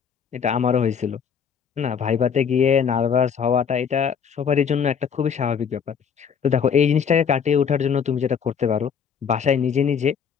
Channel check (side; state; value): right; quieter; 7.1 dB